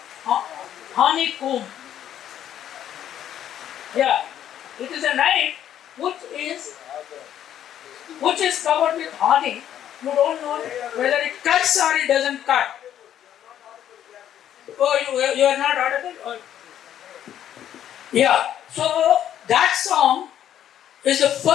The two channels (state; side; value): quieter; right; 10.7 dB